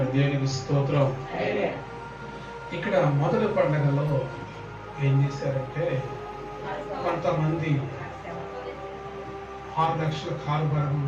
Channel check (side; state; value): both; identical; correlation 1.00